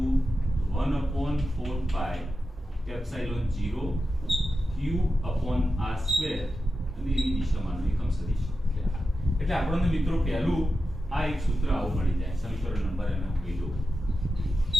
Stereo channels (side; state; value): both; normal; correlation 0.91